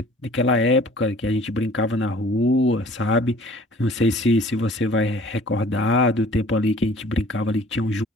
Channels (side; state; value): both; normal; correlation 0.51